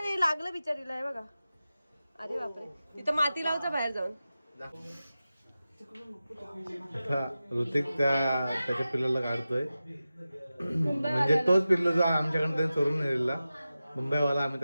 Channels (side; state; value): both; inverted; correlation -0.94